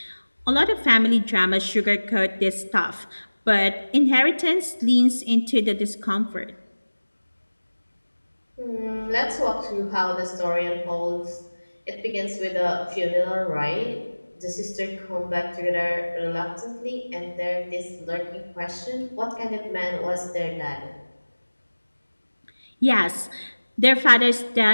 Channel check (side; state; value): both; inverted; correlation -1.00